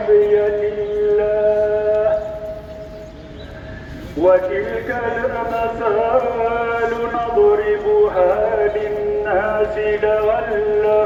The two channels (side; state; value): both; identical; correlation 1.00